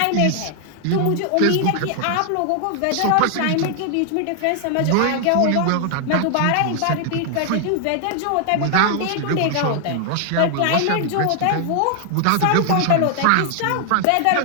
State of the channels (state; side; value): different; both; correlation 0.00